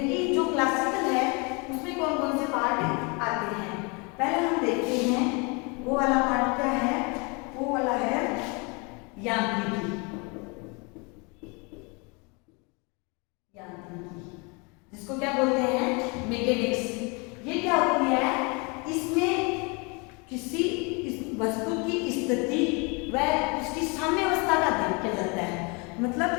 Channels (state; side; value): quieter; right; 30.6 dB